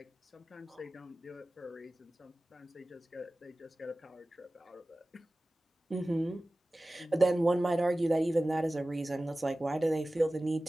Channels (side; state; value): both; normal; correlation 0.97